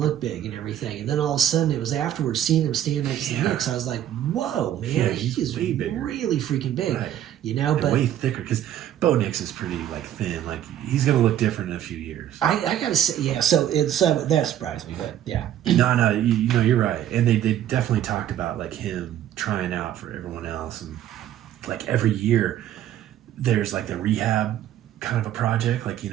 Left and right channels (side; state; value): left; quieter; 11.4 dB